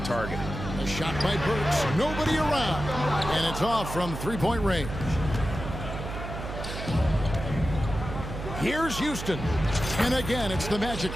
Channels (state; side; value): noise; right; hum, 7 dB below the sound